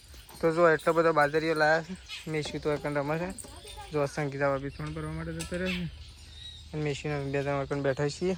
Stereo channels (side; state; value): both; identical; correlation 1.00